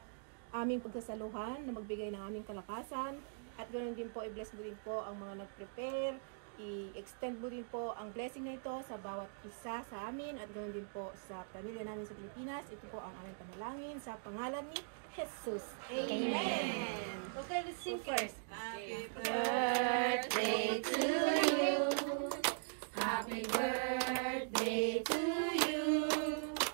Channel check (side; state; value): left; silent; digital silence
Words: aming pagsasaluhan na magbigay ng aming kalakasan, at ganoon din po i-bless mo din po ang mga nag-prepare, i-extend mo din po ang blessing na ito sa bawat isa sa amin, at ganoon din po sa pamilya namin sa Pilipinas. Ito po ang aming panalangin sa pangalan ni Jesus. Amen. Okay, let's sing first. Happy birthday to you. Happy birthday to you.